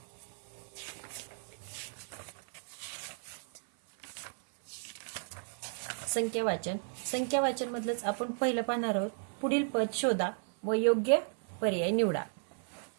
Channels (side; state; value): left; silent; 55 dB below the other